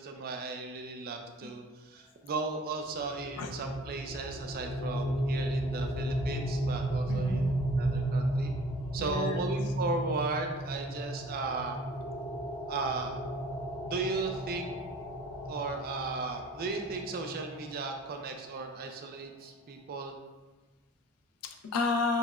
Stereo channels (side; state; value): both; normal; correlation 0.47